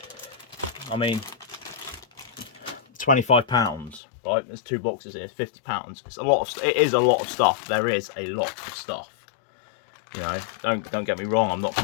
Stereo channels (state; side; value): drops out; right; at 4.0 s